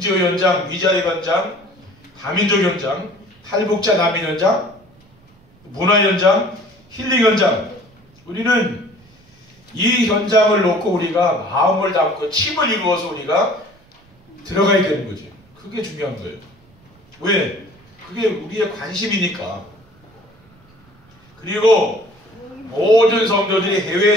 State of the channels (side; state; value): right; noise; rumble, 30 dB below the sound